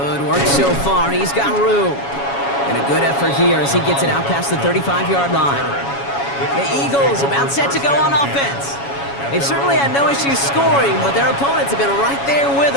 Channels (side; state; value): right; late; 7.2 ms